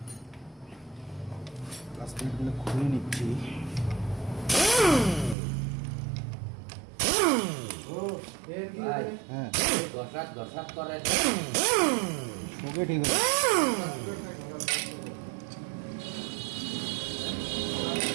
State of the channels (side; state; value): left; drops out; at 5.4 s